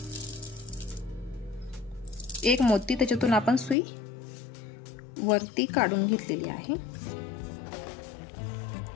एक मोती, त्याच्यातून आपण सुई वरती काढून घेतलेली आहे.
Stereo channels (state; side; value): drops out; right; at 3.8 s